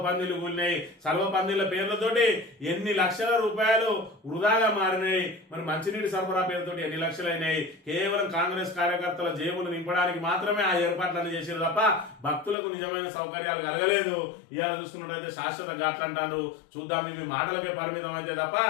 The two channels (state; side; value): drops out; right; at 12.6 s